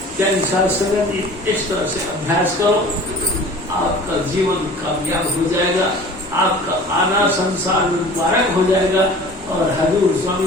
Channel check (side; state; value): both; normal; correlation 0.43